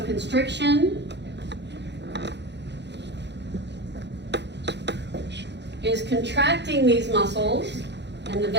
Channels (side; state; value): left; late; 0.50 ms